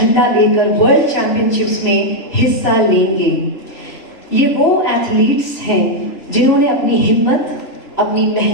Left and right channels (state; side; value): late; right; 3.2 ms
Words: लेकर वर्ल्ड चैंपियनशिप्स में हिस्सा लेंगे। ये वो एथलीट्स हैं जिन्होंने अपनी हिम्मत, अपनी